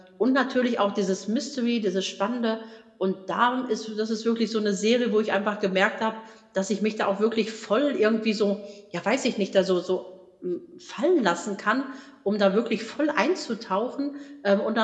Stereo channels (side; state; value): both; identical; correlation 1.00